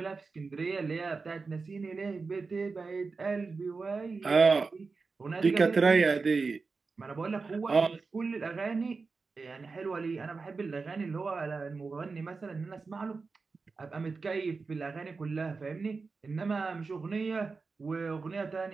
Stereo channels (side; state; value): left; quieter; 4.4 dB